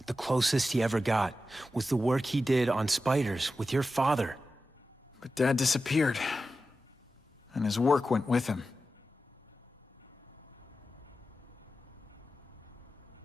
the closest he ever got was the work he did on spiders with your father. But Dad disappeared. And his work went with him.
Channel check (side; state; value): both; normal; correlation 0.92